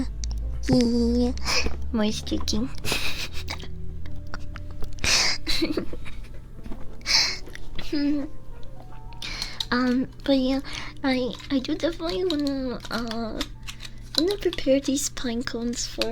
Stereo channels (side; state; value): both; identical; correlation 1.00